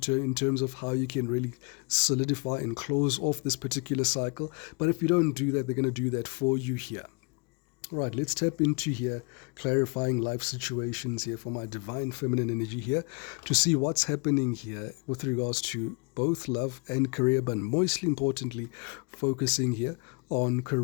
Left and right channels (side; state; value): right; quieter; 33.9 dB